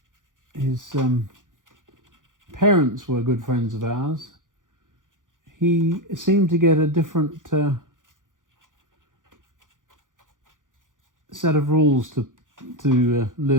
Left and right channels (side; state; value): left; late; 0.88 ms